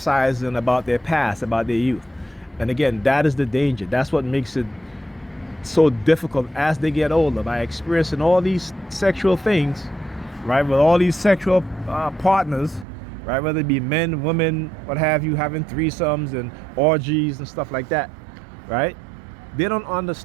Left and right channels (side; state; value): left; drops out; at 12.9 s